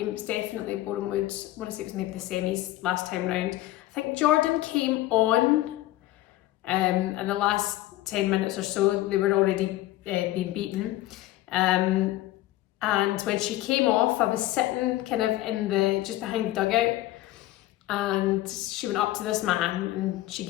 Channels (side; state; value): right; quieter; 16.1 dB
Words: It was definitely Boreham Wood. I want to say it was maybe the semis last time round. I think Jordan came on in the last 10 minutes or so. They were already being beaten. And when she came off, I was sitting kind of just behind the dugout, and she went up to this man and she